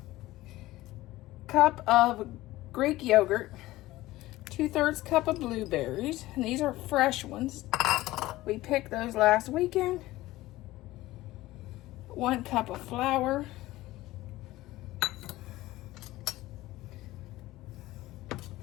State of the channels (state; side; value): quieter; right; 17.4 dB